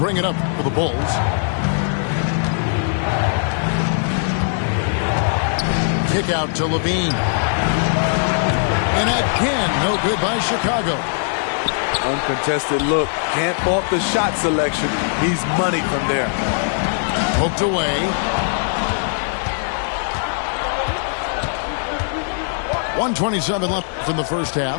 it up for the Bulls. Kick out to Levine. And again, no good by Chicago. Uncontested look. Can't fault the shot selection. He's money from there. Poked away. 1:27 left from the first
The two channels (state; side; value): silent; right; digital silence